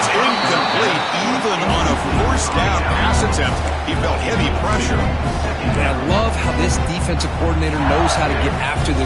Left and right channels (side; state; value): both; identical; correlation 1.00